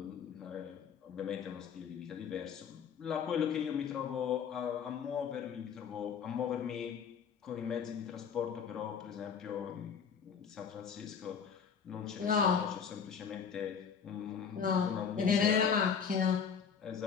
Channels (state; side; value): quieter; right; 6.8 dB